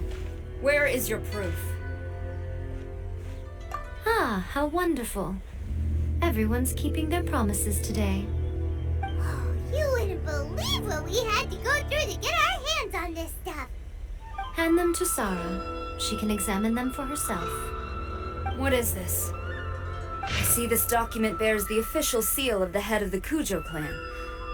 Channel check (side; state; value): both; identical; correlation 1.00